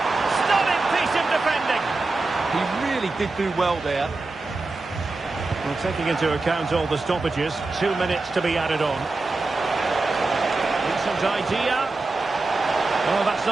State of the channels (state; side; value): quieter; left; 3.4 dB